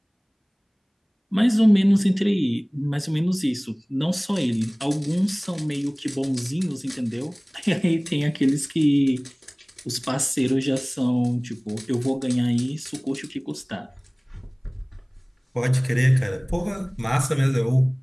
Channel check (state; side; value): identical; both; correlation 1.00